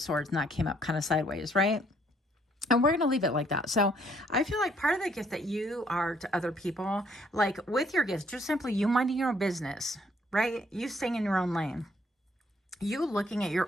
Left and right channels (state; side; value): normal; both; correlation 0.66